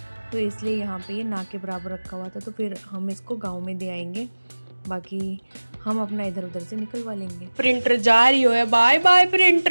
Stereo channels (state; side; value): inverted; both; correlation -1.00